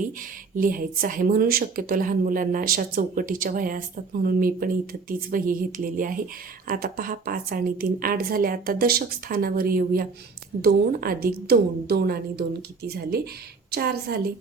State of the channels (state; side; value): quieter; left; 4.6 dB